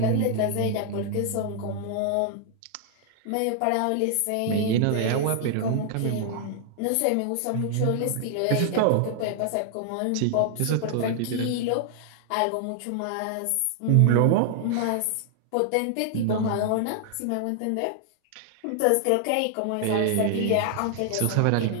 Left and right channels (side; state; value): both; different; correlation 0.00